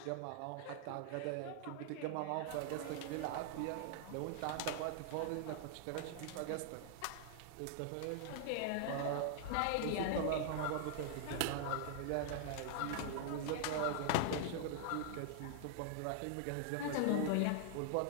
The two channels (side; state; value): both; different; correlation -0.01